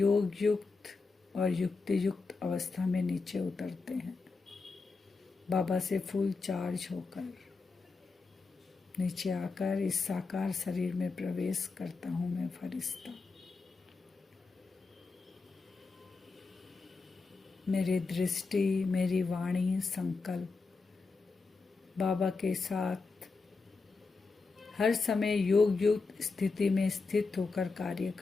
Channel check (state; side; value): quieter; right; 4.2 dB